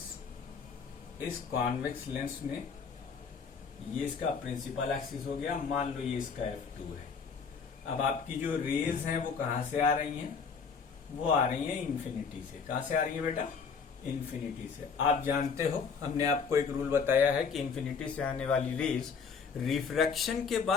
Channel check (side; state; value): right; quieter; 5.7 dB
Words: इस कॉन्वेक्स लेंस में ये इसका प्रिंसिपल एक्सिस हो गया, मान लो ये इसका f2 है। अब आपकी जो रेज हैं वो कहां से आ रही हैं, वो आ रही हैं इंफिनिटी से। कहां से आ रही है बेटा, इंफिनिटी से। आप जानते हो, हमने आपको एक रूल बताया है कि इंफिनिटी से आने वाली रेज रिफ्रैक्शन के